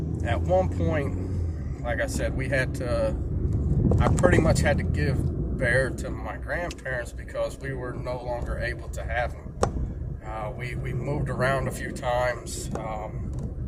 at one point, like I said, I pretty much had to give Bear to my grandparents because we were no longer able to have him. We moved around a few times.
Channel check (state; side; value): identical; both; correlation 1.00